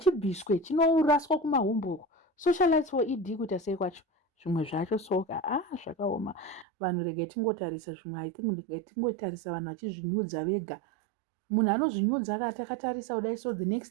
chinoraswa kumahombo. Socialites for ED kuita sei kwacho? Zvimwe zvacho soka zvakaoma. Vanhu regai tingotarisa zvimwe, I think regai tingotarisa vanhu vachizvinyudza vega. Munhu anozvinyudza akatatarisa kudai so the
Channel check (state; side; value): drops out; left; at 6.7 s